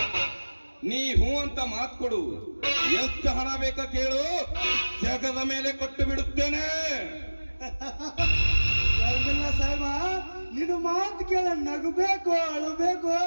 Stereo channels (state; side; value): inverted; both; correlation -1.00